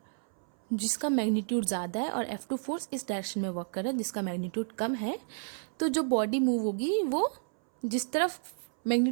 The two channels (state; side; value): silent; left; 57 dB below the other